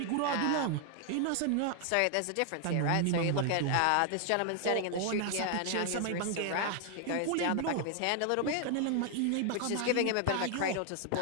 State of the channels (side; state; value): both; different; correlation 0.00